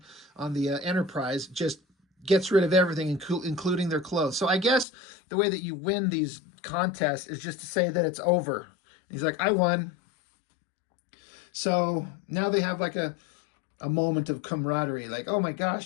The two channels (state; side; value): drops out; right; at 4.9 s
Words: the Enterprise just gets rid of everything, including their clothes. So I guess the way that you win these contests is just to say that it's over. And he's like, I won. So now they have like a moment of camaraderie, like, oh my